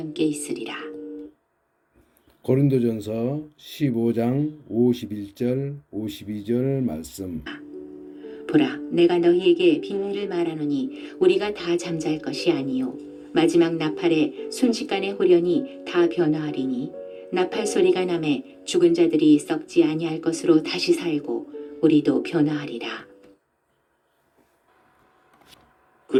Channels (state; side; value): identical; both; correlation 1.00